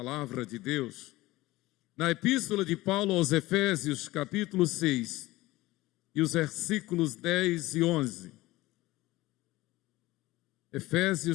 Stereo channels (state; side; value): quieter; right; 18.6 dB